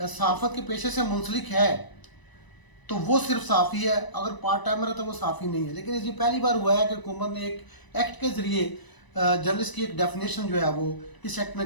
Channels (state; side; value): late; right; 1.0 ms